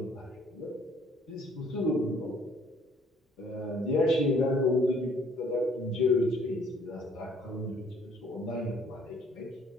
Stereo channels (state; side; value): normal; both; correlation 0.60